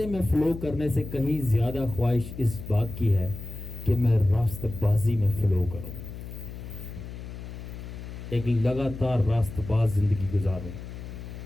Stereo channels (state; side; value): noise; left; hum, 11 dB below the sound